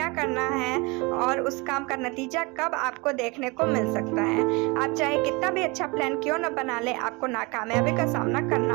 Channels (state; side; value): quieter; left; 27.1 dB